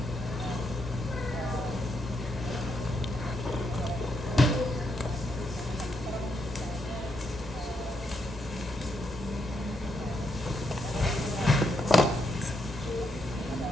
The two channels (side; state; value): both; normal; correlation 0.79